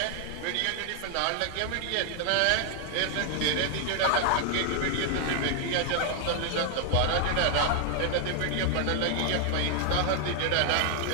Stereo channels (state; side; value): different; both; correlation 0.00